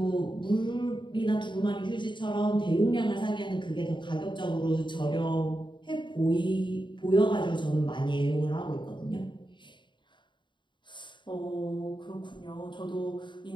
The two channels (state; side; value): late; right; 0.23 ms